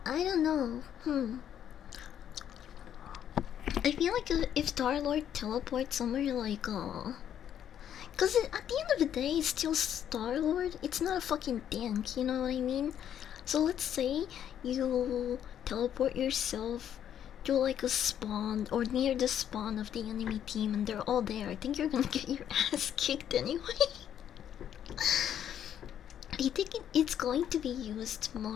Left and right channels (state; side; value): quieter; right; 9.8 dB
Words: I don't know. I feel like if Star-Lord teleports somewhere like, cause at the end of the day, it's still Star-Lord. It's not a fucking tank, you know what I mean? So let's say you teleport yourself to like a spawn or near the spawn of the enemy team and they're all there. I think you're gonna get your ass kicked anyway. I think it's going to be used